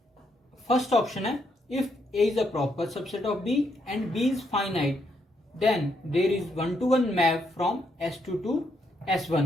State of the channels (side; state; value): both; normal; correlation 0.76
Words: First option है if A is a proper subset of B and B is finite, then there is one-to-one map from S2 to